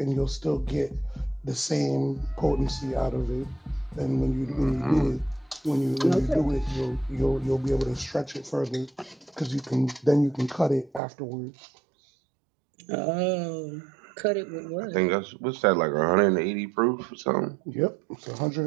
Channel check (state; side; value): drops out; left; at 11.0 s